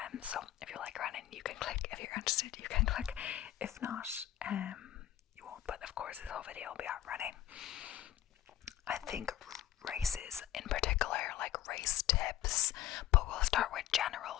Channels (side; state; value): right; quieter; 12.7 dB